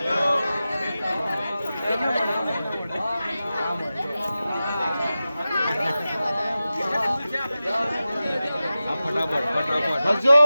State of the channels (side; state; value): both; inverted; correlation -0.94